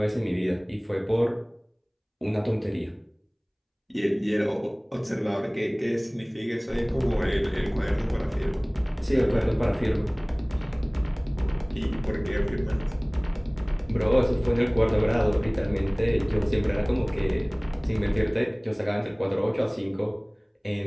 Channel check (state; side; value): identical; both; correlation 1.00